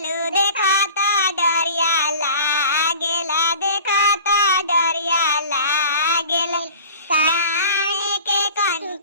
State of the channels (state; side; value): inverted; both; correlation -0.41